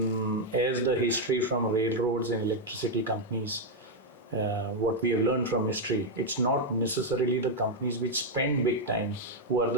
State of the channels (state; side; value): normal; both; correlation 0.01